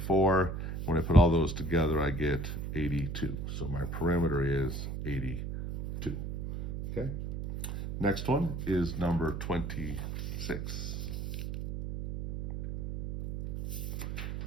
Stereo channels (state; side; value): noise; right; hum, 5 dB below the sound